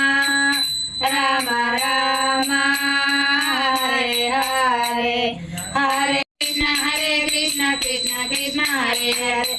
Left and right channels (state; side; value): identical; both; correlation 1.00